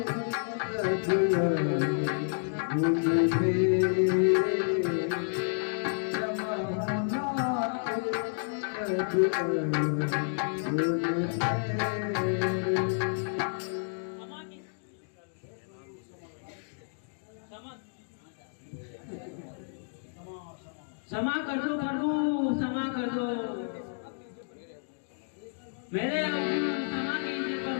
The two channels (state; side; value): silent; right; digital silence